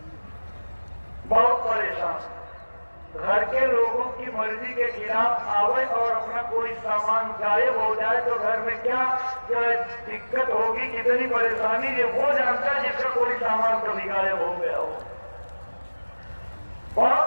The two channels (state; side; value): inverted; both; correlation -1.00